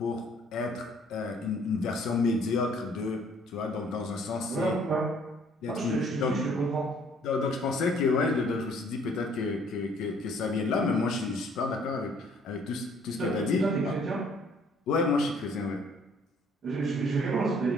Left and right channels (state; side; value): normal; both; correlation 0.60